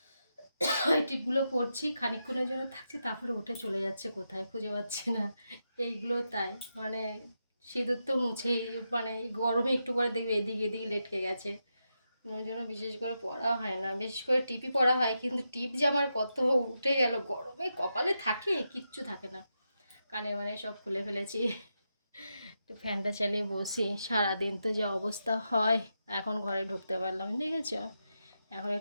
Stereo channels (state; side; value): inverted; both; correlation -0.86